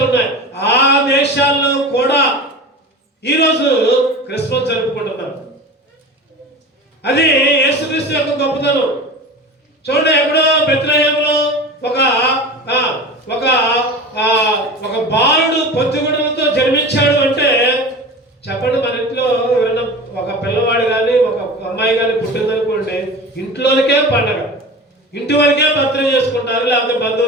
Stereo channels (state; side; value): normal; both; correlation 0.33